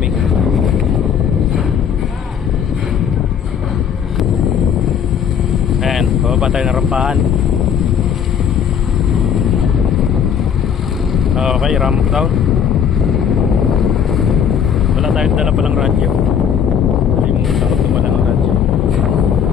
Ayan, bababa tayo na rampahan. Okay, ramp down. Wala tayong dala palang radyo. Takot naman ang radyo.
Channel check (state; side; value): quieter; right; 7.8 dB